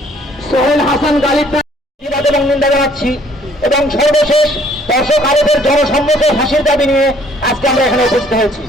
সোহেল হাসান গালিব প্রতিবাদ এবং নিন্দা জানাচ্ছি এবং সর্বশেষ দর্শক আরবের জনসম্মুখে ফাঁসির দাবি নিয়ে আজকে আমরা এখানে উপস্থিত হয়েছি।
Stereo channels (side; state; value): both; normal; correlation 0.60